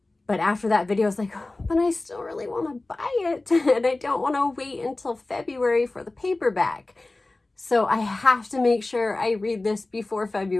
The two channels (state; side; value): quieter; right; 3.0 dB